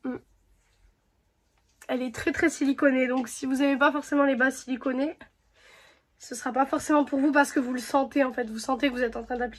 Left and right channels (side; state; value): both; identical; correlation 1.00